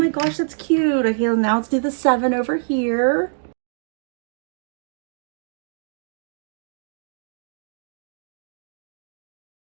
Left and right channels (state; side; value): silent; left; digital silence